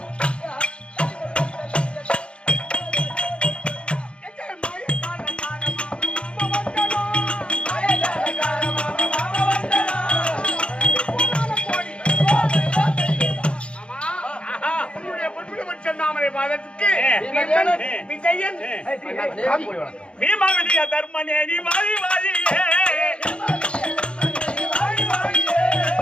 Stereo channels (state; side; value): late; right; 0.057 ms